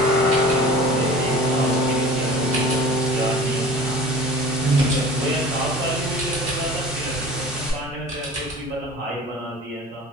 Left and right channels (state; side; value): normal; both; correlation 0.41